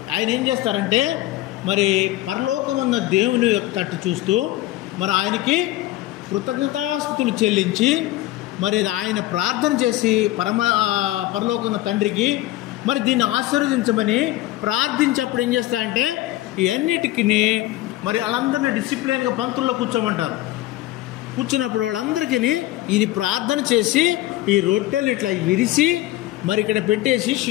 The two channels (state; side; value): quieter; right; 16.2 dB